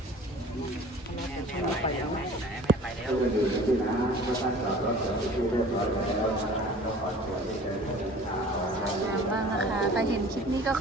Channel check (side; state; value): both; normal; correlation 0.45